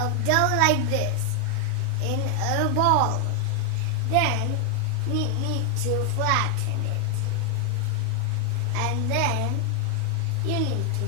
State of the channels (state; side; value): different; both; correlation 0.00